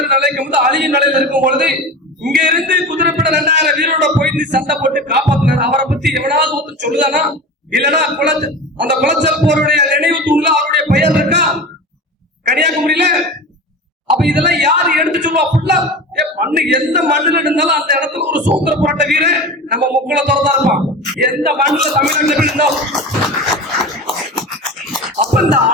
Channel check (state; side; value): normal; both; correlation 0.30